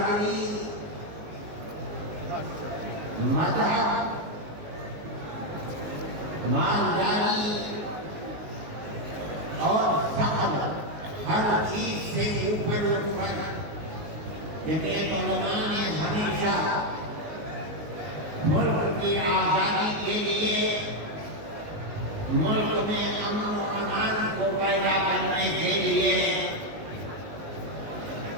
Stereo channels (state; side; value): late; left; 19 ms